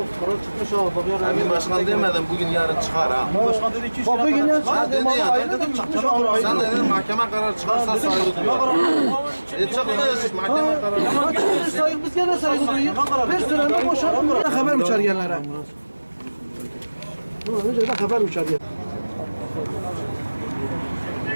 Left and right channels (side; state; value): both; inverted; correlation -1.00